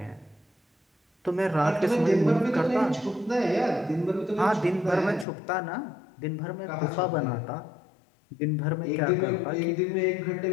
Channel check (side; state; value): right; drops out; at 5.2 s